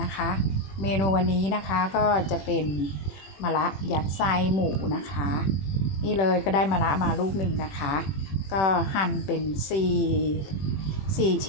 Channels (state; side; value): late; right; 21 ms